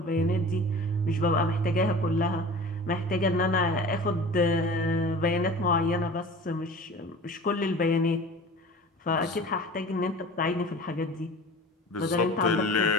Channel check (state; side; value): normal; both; correlation 0.39